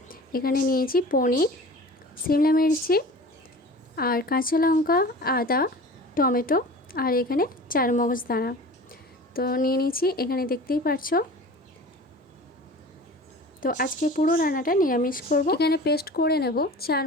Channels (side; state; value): both; normal; correlation 0.39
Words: এখানে নিয়েছি পনির, শিমলা মির্চি আর কাঁচা লঙ্কা, আদা, টমেটো আর এখানে চারমগজ দানা। তো নিয়ে নিয়েছি, এখানে দেখতেই পারছো। তো আজকে পুরো রান্নাটা নিরামিষ করব। এখানে পেস্ট করে নেব